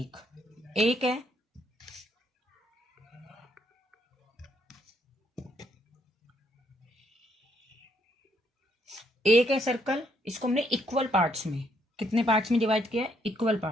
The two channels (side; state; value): both; normal; correlation 0.72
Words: एक है। एक है सर्कल, इसको हमने इक्वल पार्ट्स में, कितने पार्ट्स में डिवाइड किया है? इक्वल